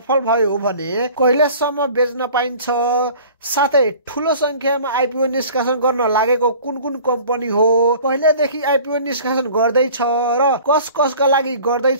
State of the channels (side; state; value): both; inverted; correlation -0.46